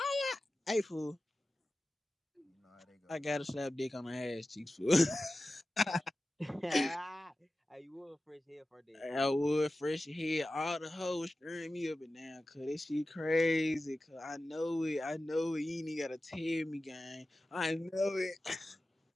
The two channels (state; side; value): normal; both; correlation 0.95